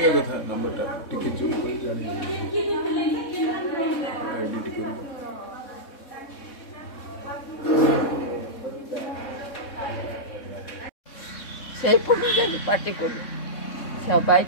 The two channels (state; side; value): late; right; 3.6 ms